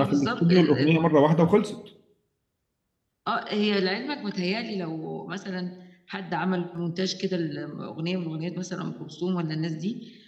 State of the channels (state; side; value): identical; both; correlation 1.00